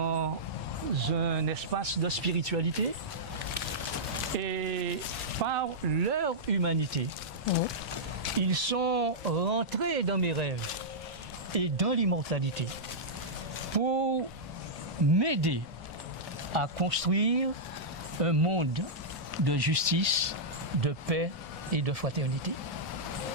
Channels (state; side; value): normal; both; correlation -0.11